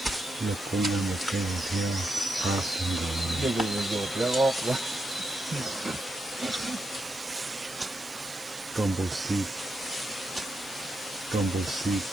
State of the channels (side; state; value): right; noise; hiss, 17 dB below the sound